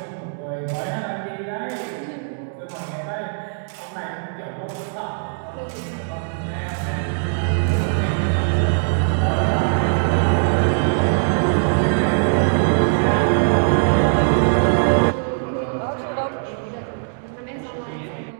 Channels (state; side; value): silent; left; digital silence